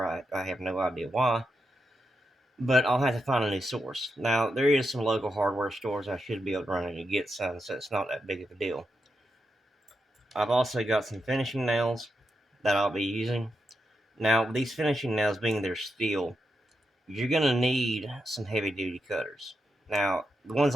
I have no idea why. but I'll have to find a new source. Now, there is some local hardware stores I should be able to run in and get some, so it's not that big of a deal. I've also got some finishing nails that I'll be using. Now, these finishing nails being they're steel, you're going to need some heavy duty cutters. Now, the ones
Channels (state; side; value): normal; both; correlation 0.85